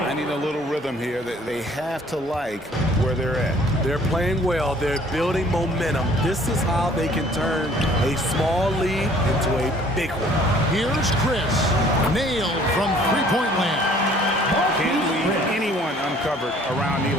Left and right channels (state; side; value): normal; both; correlation 0.56